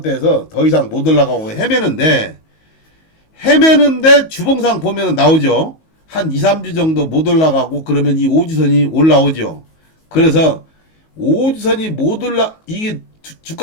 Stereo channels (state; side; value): late; right; 19 ms